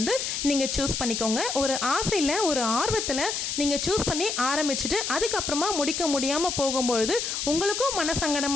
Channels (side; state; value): left; noise; hiss, 2 dB below the sound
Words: நீங்கள் சூஸ் பண்ணிக்கோங்க. ஒரு ஆசையில் ஒரு ஆர்வத்தில் நீங்கள் சூஸ் பண்ணி ஆரம்பிச்சுட்டு அதுக்கப்புறமா முடிக்க முடியாமல் போகும்பொழுது உங்களுக்கும்